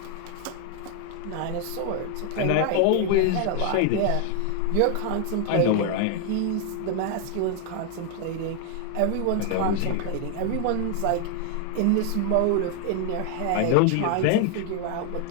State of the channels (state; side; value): different; both; correlation 0.00